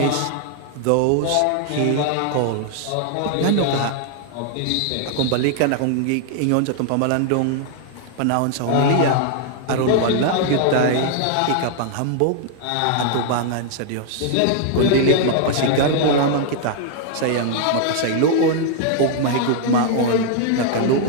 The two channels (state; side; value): different; both; correlation -0.01